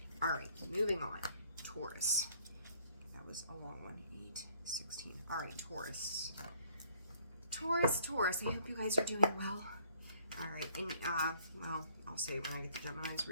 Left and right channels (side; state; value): both; inverted; correlation -0.61